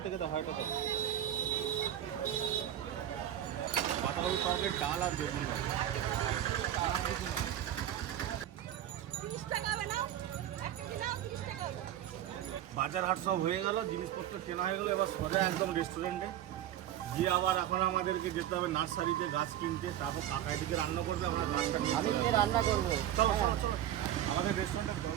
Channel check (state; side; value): quieter; left; 11.7 dB